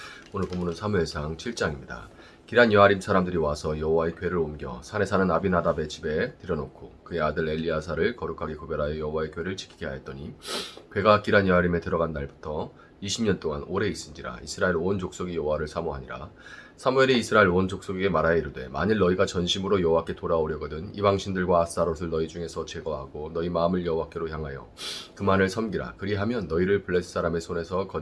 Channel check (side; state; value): both; identical; correlation 1.00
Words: 오늘 본문은 사무엘상 7장입니다. 기란 여아림 사람들이 와서 여호와의 궤를 옮겨 산에 사는 아비나답의 집에 들여놓고 그의 아들 엘리야사를 거룩하게 구별하여 여호와의 궤를 지키게 하였더니 궤가 기란 여아림에 들어간 날부터 20년 동안 오래 있은지라 이스라엘 온 족속이 여호와를 사모하니라. 사무엘이 이스라엘 온 족속에게 말하여 이르되 만일 너희가 전심으로 여호와께 돌아오려거든 이방신들과 아스타롯을 너희 중에서 제거하고 너희 마음을 여호와께로 향하여 그만을 섬기라. 그리하면 너희를 블레셋 사람의 손에서